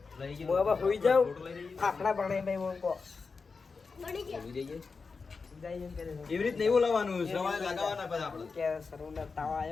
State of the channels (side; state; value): right; quieter; 4.7 dB